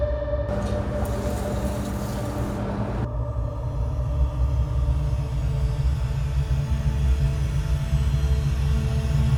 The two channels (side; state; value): both; identical; correlation 1.00